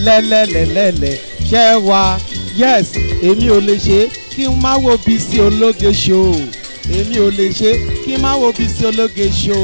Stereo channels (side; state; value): both; inverted; correlation -1.00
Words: ṣẹ́ wá yes èmi ò lè ṣe kí n má wo Bisi ológe show èmi ò lè ṣe kí n má wo Bisi ológe show